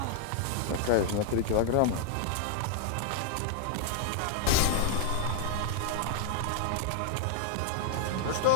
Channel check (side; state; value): both; different; correlation 0.00